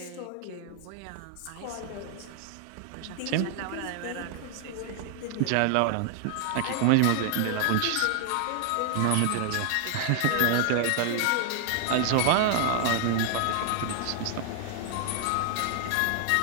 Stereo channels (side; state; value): both; different; correlation 0.00